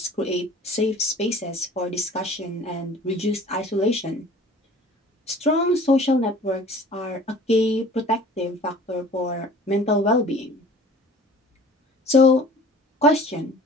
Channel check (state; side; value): normal; both; correlation 0.46